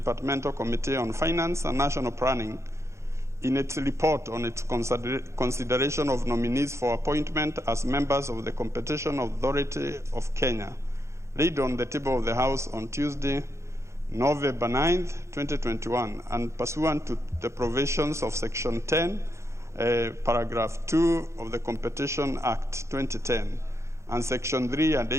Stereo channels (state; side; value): late; left; 0.14 ms